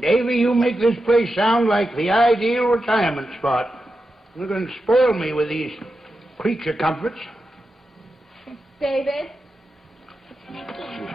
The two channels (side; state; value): both; normal; correlation 0.89